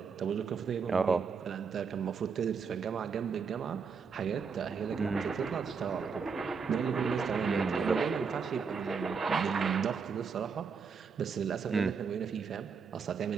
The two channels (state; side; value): quieter; left; 5.7 dB